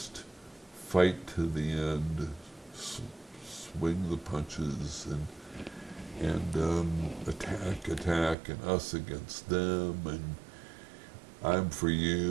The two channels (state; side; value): drops out; left; at 8.3 s